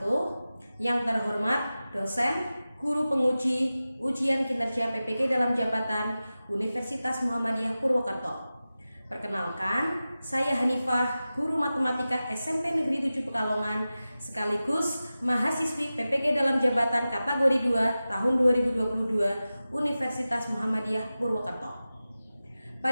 Yang terhormat dosen, guru penguji ujian kinerja PPG dalam jabatan Universitas Muhammadiyah Purwokerto. Perkenalkan, saya Hanifah, guru matematika SMP Negeri 7 Pekalongan, sekaligus mahasiswi PPG dalam jabatan kategori 2 tahun 2022 Universitas Muhammadiyah Purwokerto.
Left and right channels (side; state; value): both; inverted; correlation -0.95